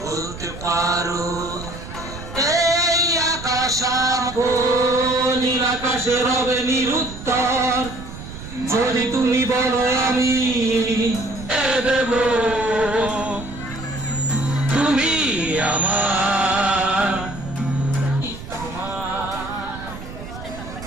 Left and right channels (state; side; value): noise; right; rumble, 12 dB below the sound